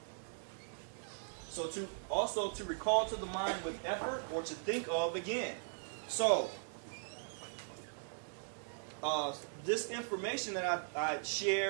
So to recall to the mind with effort, or to think of again. So this information that I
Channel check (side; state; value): left; silent; digital silence